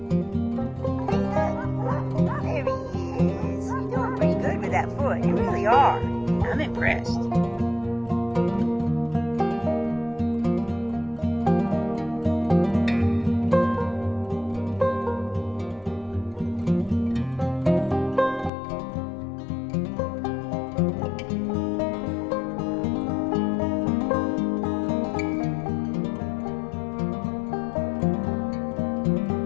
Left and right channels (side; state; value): right; drops out; at 18.5 s